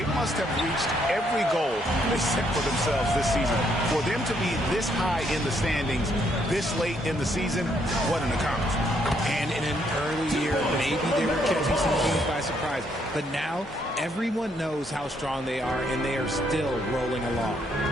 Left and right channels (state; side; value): normal; both; correlation 0.72